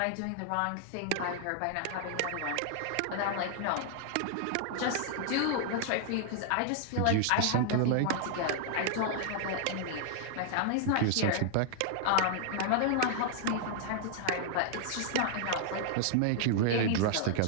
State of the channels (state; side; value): different; both; correlation -0.01